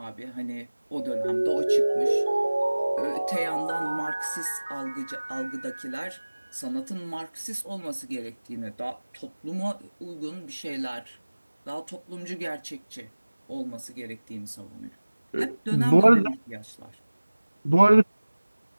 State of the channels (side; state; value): both; inverted; correlation -1.00